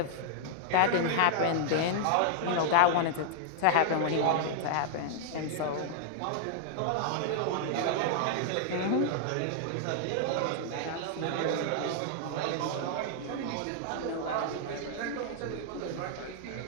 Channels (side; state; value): both; different; correlation -0.01